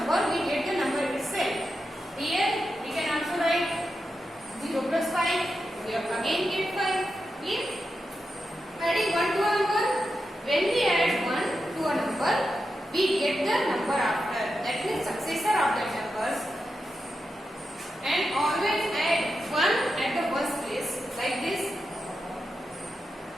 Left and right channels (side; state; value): both; normal; correlation 0.88